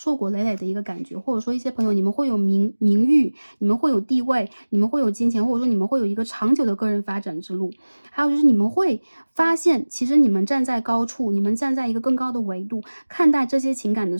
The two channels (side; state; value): both; inverted; correlation -1.00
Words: 果累累的一个感觉。或者说一些朋友你们会有名誉，你们会有地位，你们会有金钱，或者说你们会有一个长久的个人发展之路。还有就是你们会发现，其实你们站在高处，你们站在一个更高的维度看待这些情感的